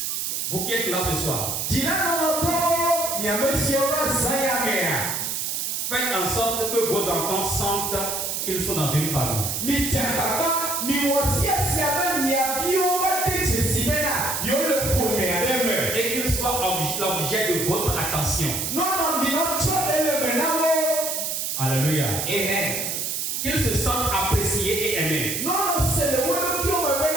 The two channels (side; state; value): right; noise; hiss, 2 dB below the sound